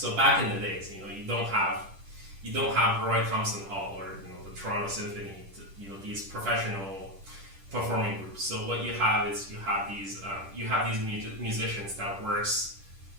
back in the days, you don't have Roy Thompson Hall or the Toronto Symphony, these professional performing groups. So what you have is you have these musicians that works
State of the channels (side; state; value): left; late; 10 ms